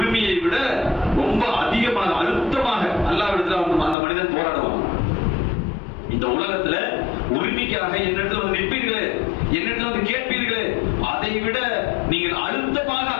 விட ரொம்ப அதிகமாக அழுத்தமாக அல்லாஹ்விடத்துல அந்த மனிதன் போராடுவான். இந்த உலகத்துல உரிமைக்காக என்னிடத்துல வந்து நிற்பீர்களே, என்னிடத்துல வந்து கேட்பீர்களே, அதை விட நீங்கள் அழுத்தமாக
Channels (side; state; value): right; drops out; at 4.0 s